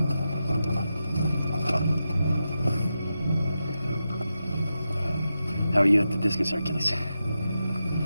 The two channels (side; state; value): both; inverted; correlation -0.89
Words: How are you at the discus, Hercules?